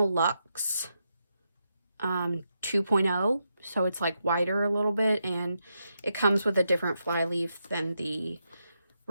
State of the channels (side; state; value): both; inverted; correlation -0.84